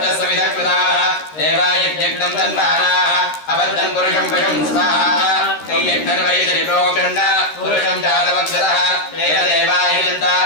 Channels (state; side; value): late; right; 13 ms